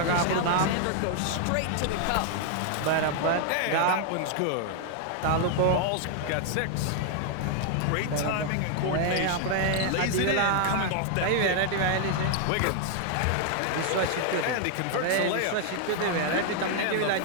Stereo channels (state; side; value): different; both; correlation 0.00